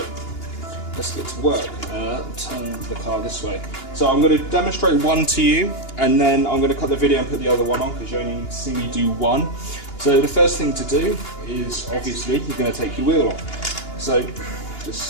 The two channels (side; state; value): right; late; 2.8 ms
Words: let's get to work. Turn the car this way. So I'm going to demonstrate one to you, and then I'm going to cut the video and put the other one on, because you only see me do one. So the first thing to do is, obviously, you're going to take your wheel off. So